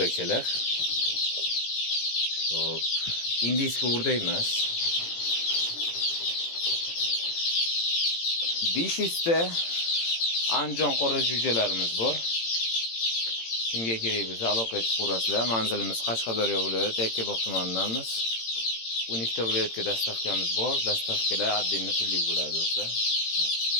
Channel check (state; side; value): late; right; 18 ms